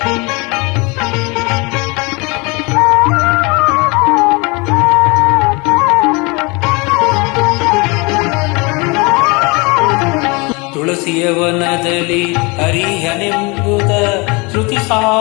ತುಳಸಿಯ ವನದಲ್ಲಿ ಹರಿಹನೆಂಬುದ ಶ್ರುತಿ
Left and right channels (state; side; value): quieter; right; 27.6 dB